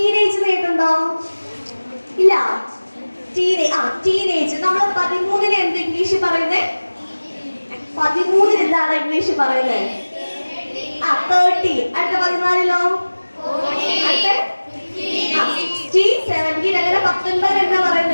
കേട്ടുണ്ടോ? ഇല്ല. ടീനേജ്. നമ്മൾ 13-ന് എന്ത് ഇംഗ്ലീഷ് പറയുന്നേ? 13-ന് എന്താണ് ഇംഗ്ലീഷ് പറയുന്നത്? 13. അടുത്ത 14-ലോ? അടുത്ത 16, 17. അങ്ങനെ 19 എന്താ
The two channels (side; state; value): both; inverted; correlation -1.00